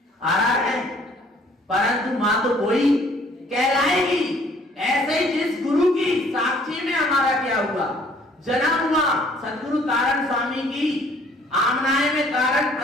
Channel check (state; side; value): normal; both; correlation 0.58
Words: आ रहा है, परंतु मां तो कोई कहलाएगी। ऐसे ही जिस गुरु की साक्षी में हमारा क्या हुआ? जन्म हुआ। सदगुरु तारण स्वामी की आमनाए में, तारण